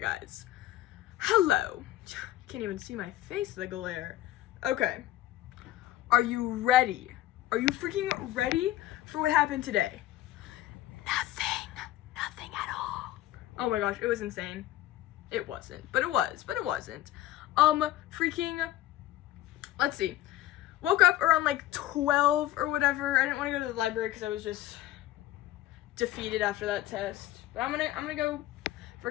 Hello. Can't even see my face, the glare. Okay. Are you ready? Are you freaking ready for what happened today? Nothing at all. Oh my gosh, it was insane. It wasn't, but it wasn't. Freaking, let's see. Woke up around like 12 or whatever. I didn't want to go to the library because I was just defeated after that test. But I'm gonna go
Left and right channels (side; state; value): right; quieter; 14.4 dB